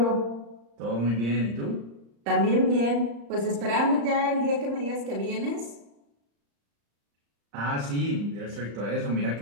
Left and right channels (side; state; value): left; late; 35 ms